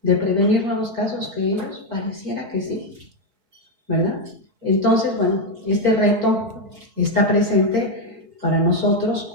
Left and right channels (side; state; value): left; late; 4.2 ms